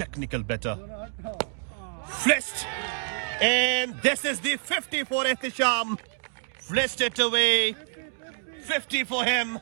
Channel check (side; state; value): left; silent; digital silence